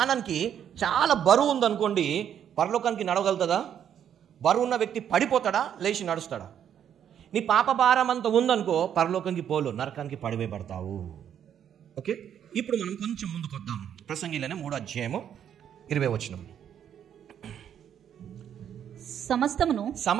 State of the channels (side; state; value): left; quieter; 9.3 dB